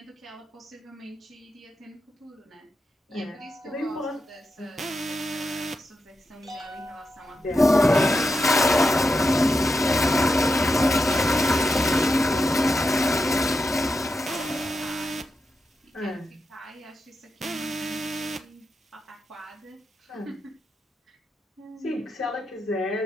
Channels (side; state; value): both; normal; correlation 0.87